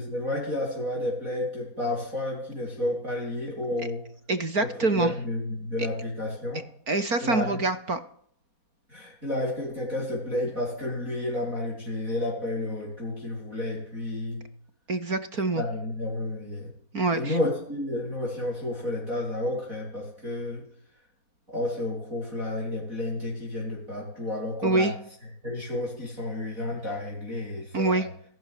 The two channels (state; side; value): late; left; 4.4 ms